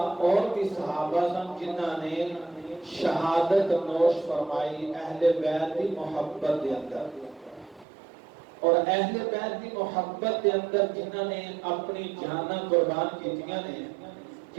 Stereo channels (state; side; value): drops out; left; at 7.9 s